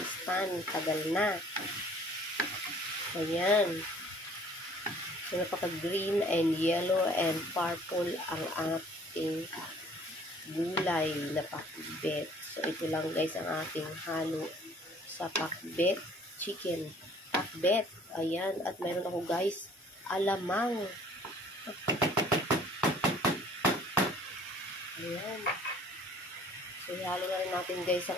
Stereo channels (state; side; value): normal; both; correlation 0.54